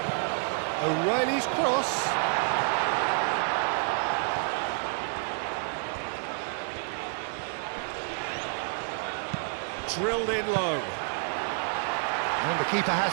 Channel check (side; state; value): left; silent; 59 dB below the other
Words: O'Reilly's cross. Drilled in low. And the keeper